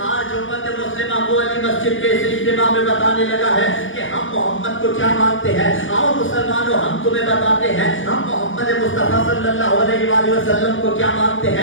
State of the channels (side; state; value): right; late; 0.57 ms